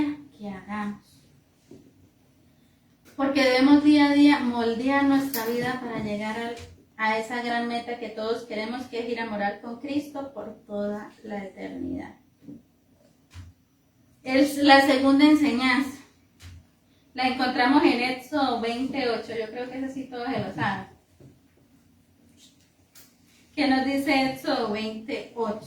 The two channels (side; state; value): both; identical; correlation 1.00